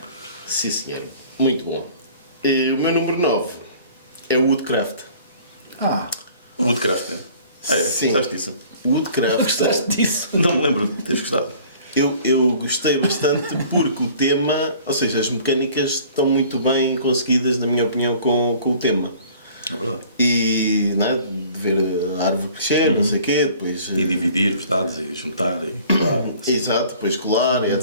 Sim, senhor. Muito bom. E o meu número 9 é o Woodcraft. Woodcraft, é? Sim. Gostaste disso? Woodcraft. Gostaste disso? Não me lembro de teres gostado. Eu gostei bastante porque o tema, ou seja, as mecânicas estão muito bem conseguidas, na minha opinião, com o tema. É verdade. E não é? De ver a árvore crescer, não sei o quê, depois. E dividir os dados e juntar e claro. Exato, depois colar,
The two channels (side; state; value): both; inverted; correlation -0.51